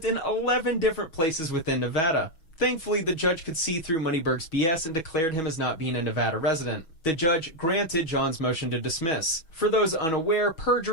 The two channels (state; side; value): late; right; 6.2 ms